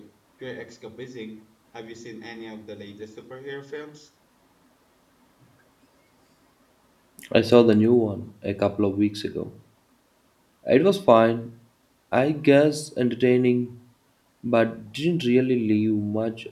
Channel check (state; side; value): identical; both; correlation 1.00